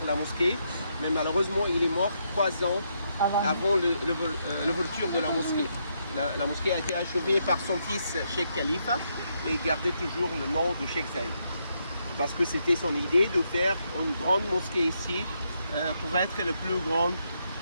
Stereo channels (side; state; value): both; inverted; correlation -0.78